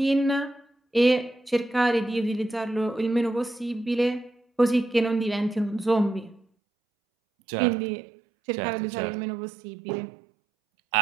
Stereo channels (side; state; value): left; drops out; at 6.5 s